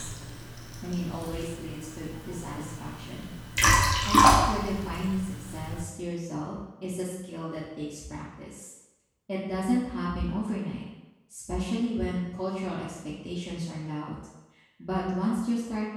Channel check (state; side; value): identical; both; correlation 1.00